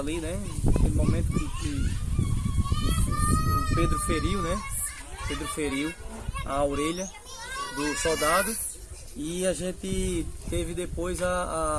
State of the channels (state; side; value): identical; both; correlation 1.00